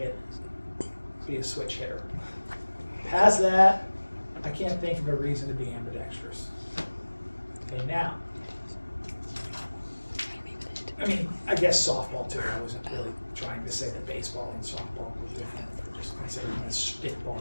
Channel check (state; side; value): inverted; both; correlation -1.00